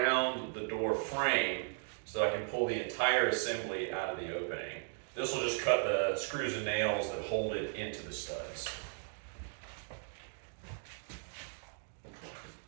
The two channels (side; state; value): left; silent; 53 dB below the other